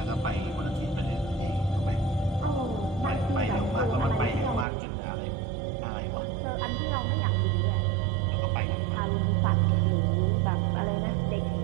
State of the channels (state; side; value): drops out; left; at 4.7 s